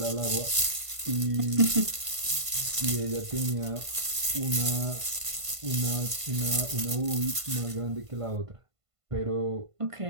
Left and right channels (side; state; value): left; late; 1.5 ms